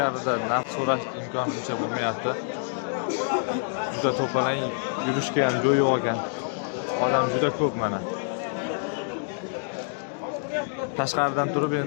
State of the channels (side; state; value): right; silent; digital silence